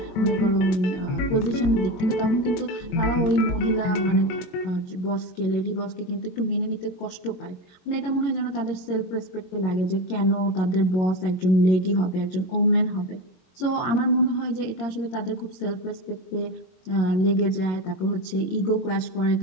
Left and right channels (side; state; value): right; late; 22 ms